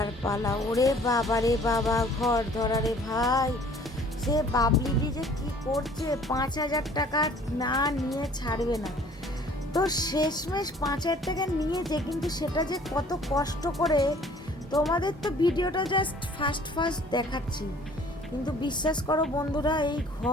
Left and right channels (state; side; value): normal; both; correlation 0.53